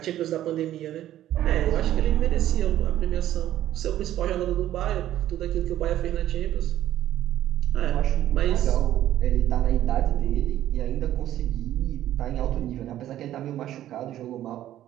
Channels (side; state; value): left; quieter; 12.7 dB